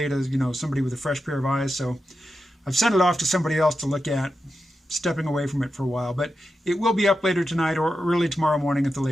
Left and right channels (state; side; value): normal; both; correlation 0.89